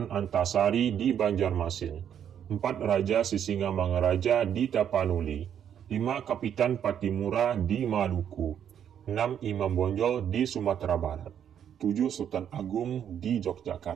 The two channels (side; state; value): left; quieter; 9.1 dB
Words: Antasari di Banjarmasin. 4. Raja Sisingamangaraja di Tapanuli. 5. Kapitan Patimura di Maluku. 6. Imam Bonjol di Sumatera Barat. 7. Sultan Agung di